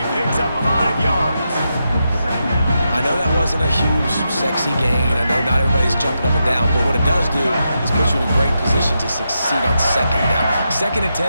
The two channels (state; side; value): inverted; both; correlation -0.86